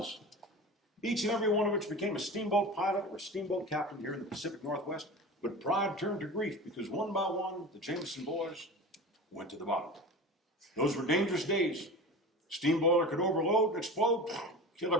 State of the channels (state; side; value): normal; both; correlation 0.32